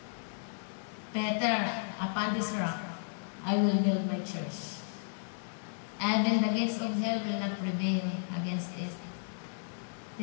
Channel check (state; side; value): silent; right; digital silence